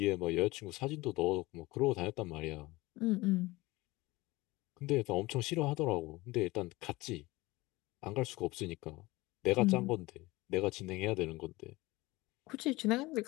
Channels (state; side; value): quieter; right; 20.9 dB